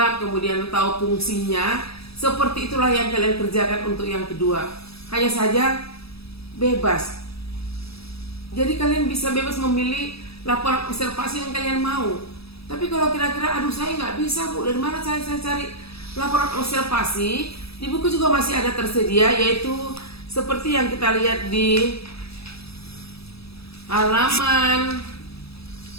kemudian tahu fungsinya. Seperti itulah yang kalian kerjakan untuk yang kedua. Hanya saja bebas. Jadi kalian bisa bebas memilih laporan observasi yang kalian mau. Tapi kalau kira-kira aduh saya nggak bisa Bu, dari mana saya cari laporan observasi? Di buku juga masih ada tersedia, yaitu seperti yang kita lihat di halaman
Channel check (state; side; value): late; right; 0.77 ms